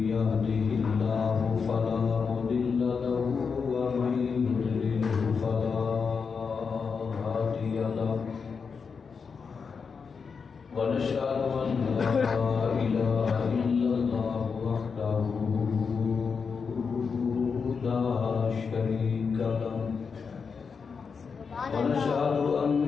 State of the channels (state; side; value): quieter; right; 5.6 dB